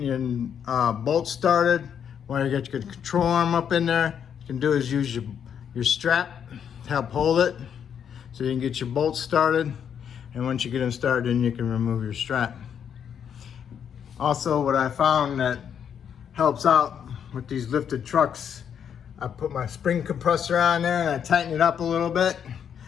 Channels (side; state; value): right; quieter; 8.2 dB